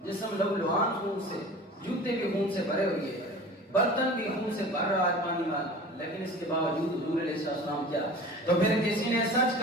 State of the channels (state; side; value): normal; both; correlation 0.39